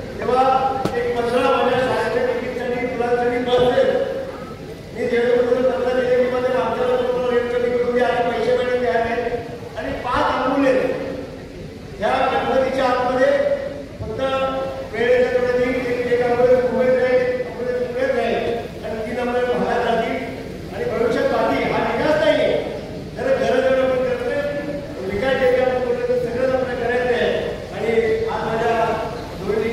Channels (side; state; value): both; identical; correlation 1.00